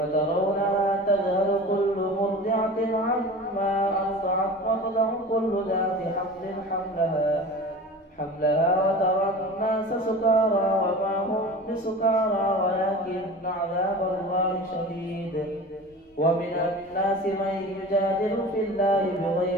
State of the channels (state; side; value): normal; both; correlation 0.36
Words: تذهل كل مرضعة عما أرضعت وتضع كل ذات حمل حملها وترى الناس سكارى وما هم بسكارى ولكن عذاب الله شديد. ومن الناس من يجادل في الله